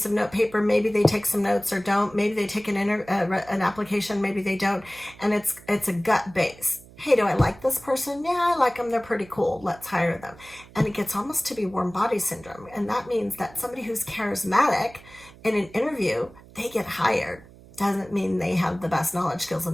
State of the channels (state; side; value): noise; right; hum, 22 dB below the sound